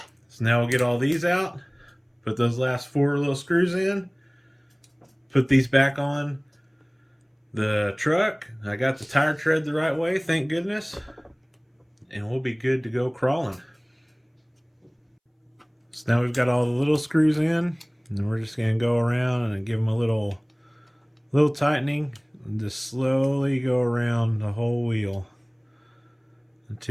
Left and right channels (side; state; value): both; identical; correlation 1.00